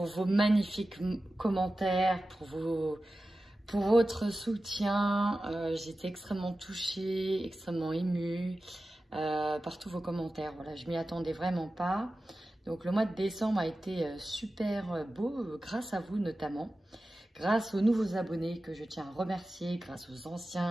vos magnifiques commentaires, pour votre soutien. J'étais extrêmement touchée, extrêmement émue par tous vos commentaires. Voilà, je m'y attendais vraiment pas. Donc le mois de décembre a été super beau, grâce à vous notamment. Grâce aux nouveaux abonnés que je tiens à remercier, grâce aux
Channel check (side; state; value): both; normal; correlation 0.94